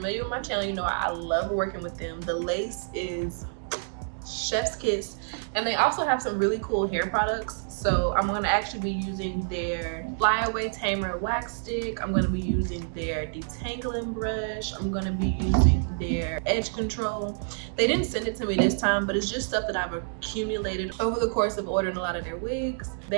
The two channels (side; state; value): left; silent; digital silence